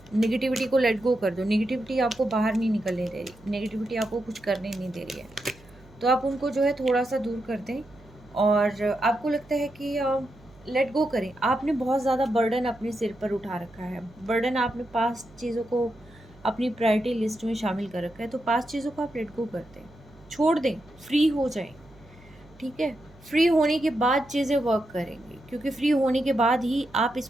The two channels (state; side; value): noise; right; hum, 25 dB below the sound